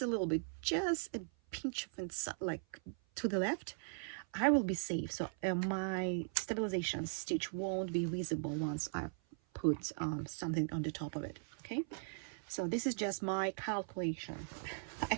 a little bit, just a pinch of inside, like to the left, I will be safe. So my stabilization stitch won't be visible once I put something on the top of it. Okay, so this is just my calculation. I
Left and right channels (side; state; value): left; silent; 52 dB below the other